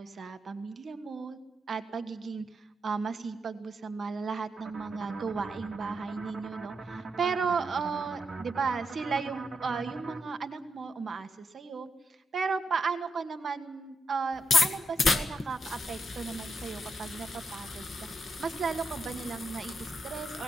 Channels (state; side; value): normal; both; correlation 0.81